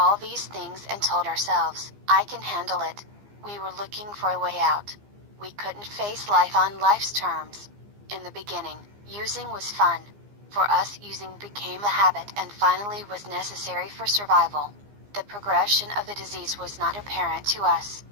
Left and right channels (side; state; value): left; late; 15 ms